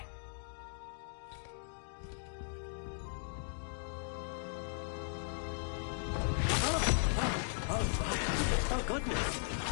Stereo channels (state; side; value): silent; right; digital silence